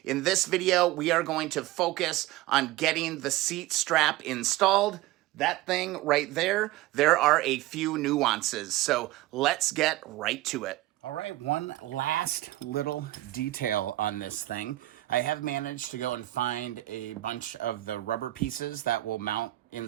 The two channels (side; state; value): left; quieter; 16.9 dB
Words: In this video, we are going to focus on getting the seat strap installed. That thing right there, there are a few nuances. So let's get right to it. All right, one last little detail on this thing. I have managed to go and find a bunch of the rubber pieces that will mount